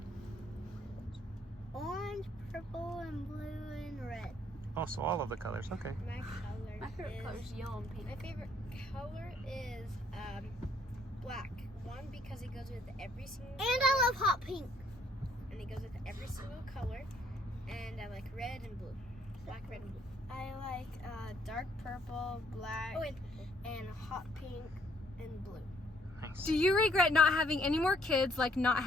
Orange, purple, and blue, and red. Oh, so all of the colors, okay. My color My favorite color is yellow and pink. My favorite color is black. One, because it goes with every single And I love hot pink. and it goes with every single color. And I like red and blue. Black, red, and blue. I like dark purple, black, and hot pink and blue. Nice. Do you regret not having any more kids, like not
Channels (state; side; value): normal; both; correlation 0.66